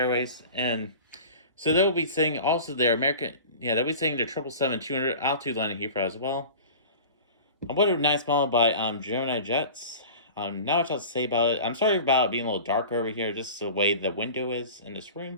And so they'll be saying also their American, they'll be saying their 777-200 out to London Heathrow as well. What a nice model by Gemini Jets. Not much else to say about it. I'm sorry about it being a little darker over here, just the way the window is in this room.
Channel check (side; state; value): both; inverted; correlation -0.39